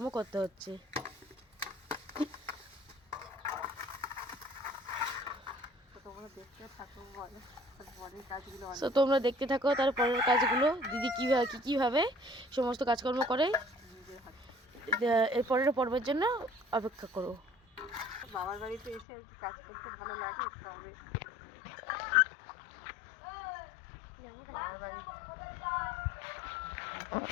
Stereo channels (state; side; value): drops out; right; at 19.1 s